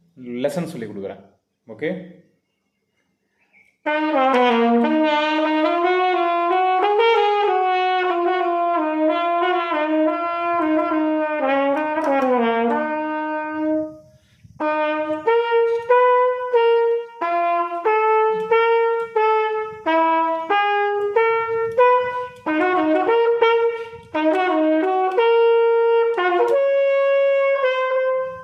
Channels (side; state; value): both; identical; correlation 1.00